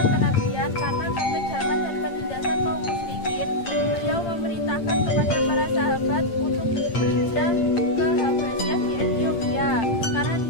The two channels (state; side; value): late; right; 8.8 ms